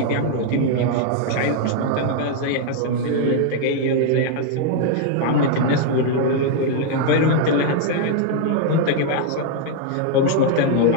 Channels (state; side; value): different; both; correlation 0.00